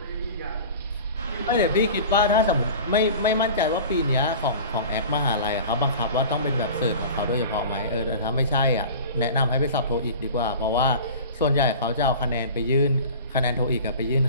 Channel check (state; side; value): inverted; both; correlation -0.38